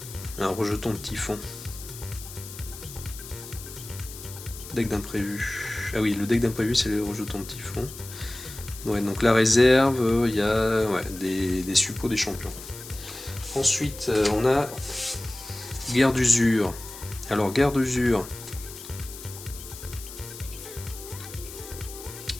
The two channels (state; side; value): noise; left; hiss, 14 dB below the sound